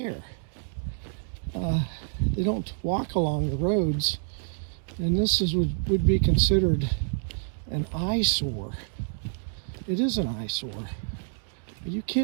They don't walk along the roads, and this would be considered an eyesore. It is an eyesore. Are you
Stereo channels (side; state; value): left; silent; digital silence